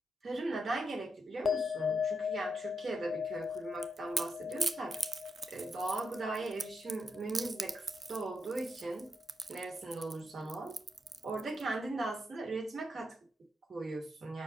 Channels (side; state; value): both; normal; correlation 0.81